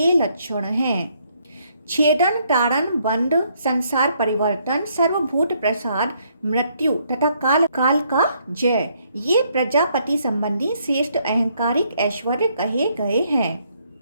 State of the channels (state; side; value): inverted; both; correlation -0.71